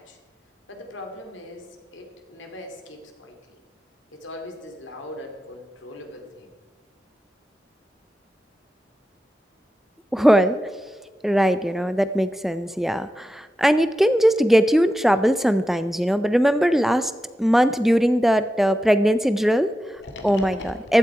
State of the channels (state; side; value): normal; both; correlation 0.91